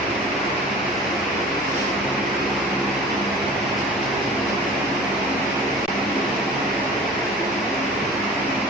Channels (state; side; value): normal; both; correlation 0.42